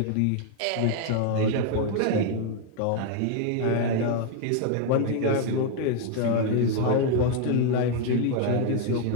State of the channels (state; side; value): different; both; correlation 0.00